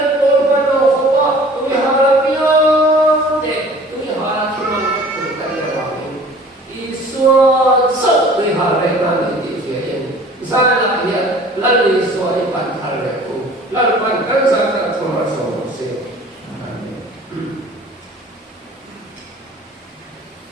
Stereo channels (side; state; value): both; normal; correlation 0.48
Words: tôi bắt đầu không có tụi họ là tiếng xua sốc tụi họ lại mang đến thị phía in ra là hiện lần đi xua đi bàn thờ lại cùng lần bàn cân ra